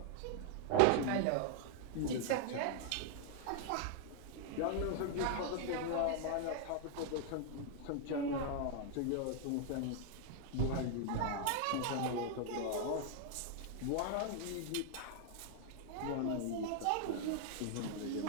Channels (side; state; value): both; different; correlation 0.00